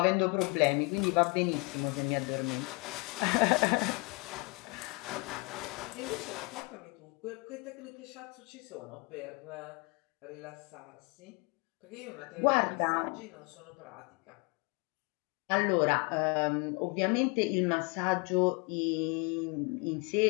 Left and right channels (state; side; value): quieter; right; 30.2 dB